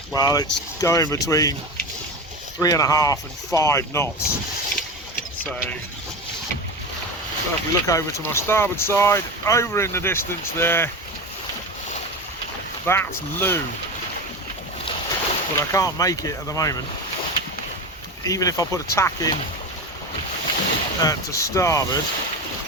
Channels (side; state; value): both; normal; correlation 0.25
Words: well, it's going between 3.5 and 5 knots. So if we look over to my starboard side, over in the distance there, that's Looe. But I can't make it at the moment. Even if I put a tack in to starboard,